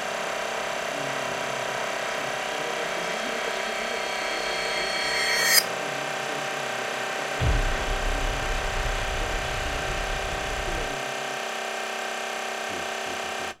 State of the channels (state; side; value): identical; both; correlation 1.00